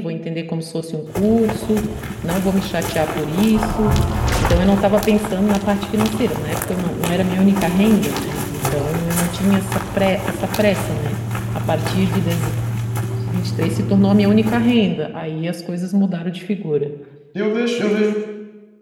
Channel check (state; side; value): identical; both; correlation 1.00